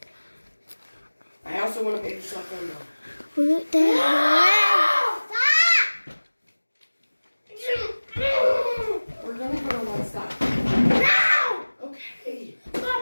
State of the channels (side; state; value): both; inverted; correlation -1.00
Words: I also want a baby shotgun though. What the heck?